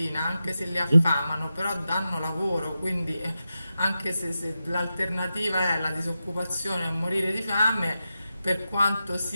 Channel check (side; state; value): both; inverted; correlation -0.90